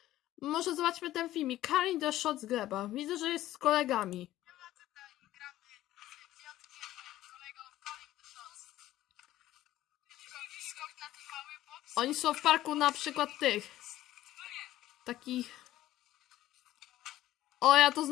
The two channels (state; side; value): quieter; right; 14.5 dB